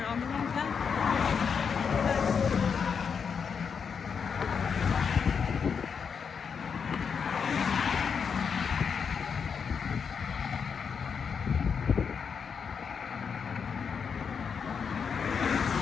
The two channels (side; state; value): right; quieter; 6.3 dB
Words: on the wrong path.